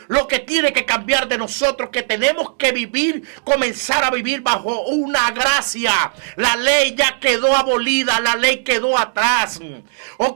lo que tiene que cambiar de nosotros, que tenemos que vivir, comenzar a vivir bajo una gracia. La ley ya quedó abolida, la ley quedó atrás.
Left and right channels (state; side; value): silent; left; digital silence